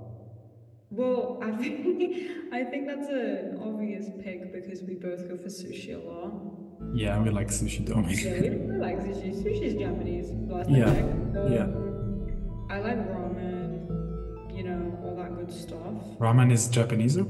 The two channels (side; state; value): both; identical; correlation 1.00